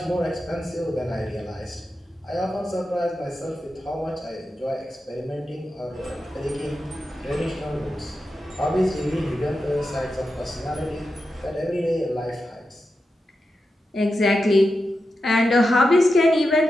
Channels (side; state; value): both; normal; correlation 0.89